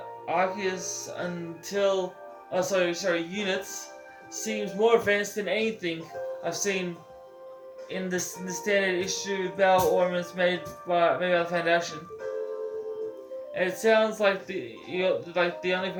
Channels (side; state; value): both; identical; correlation 1.00